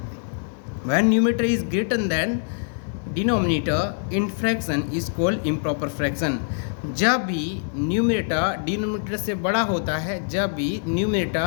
When numerator is greater than denominator in fraction is called improper fraction. जब भी न्यूमरेटर डिनोमिनेटर से बड़ा होता है, जब भी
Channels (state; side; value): silent; right; digital silence